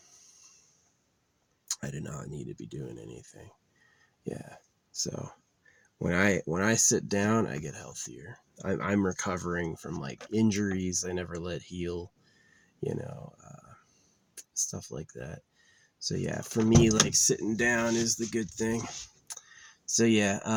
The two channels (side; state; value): both; identical; correlation 1.00